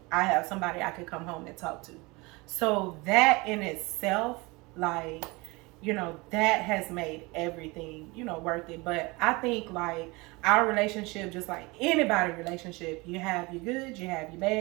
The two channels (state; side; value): quieter; left; 24.8 dB